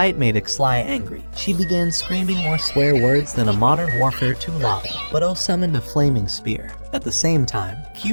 made Ixli angry, she began screaming more swear words than a Modern Warfare 2 lobby, but O summoned a flaming spear. At the same time,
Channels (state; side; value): inverted; both; correlation -1.00